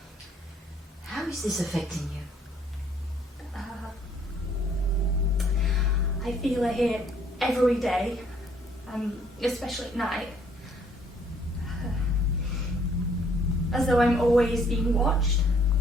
How is this affecting you? I feel her here every day, especially at night. As though I'm always being watched.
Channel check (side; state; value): both; normal; correlation 0.63